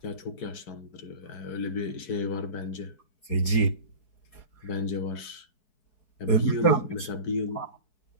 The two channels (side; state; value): right; late; 4.6 ms